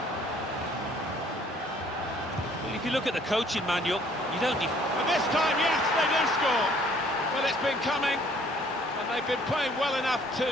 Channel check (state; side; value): normal; both; correlation 0.59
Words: Well, if you look at the coaching manual, you don't... And this time, yes, they do score. Well, it's been coming, and they've been playing well enough